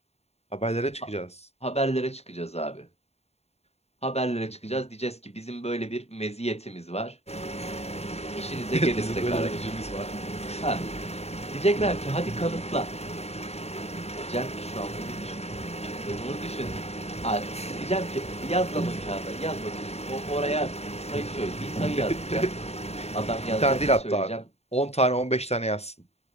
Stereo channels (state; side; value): late; right; 0.30 ms